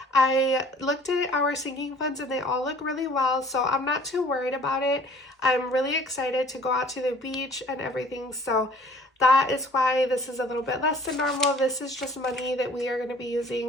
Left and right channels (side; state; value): both; normal; correlation 0.52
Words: I looked at our sinking funds and they all look really well, so I'm not too worried about it. I'm really excited to go out to the beach and everything, so that is why this is a little bit less than normal. This is just money that we are going to be